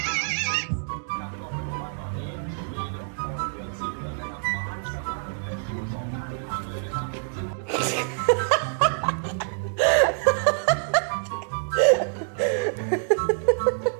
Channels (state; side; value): silent; left; digital silence